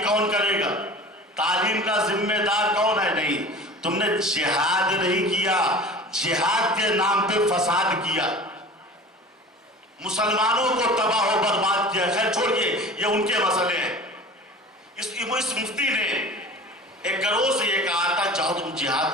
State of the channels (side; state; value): both; normal; correlation 0.39